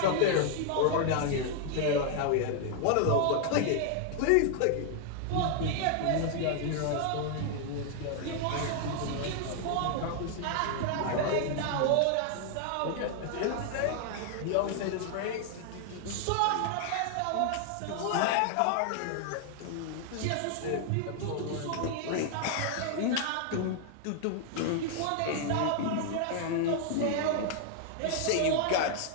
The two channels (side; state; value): both; different; correlation 0.00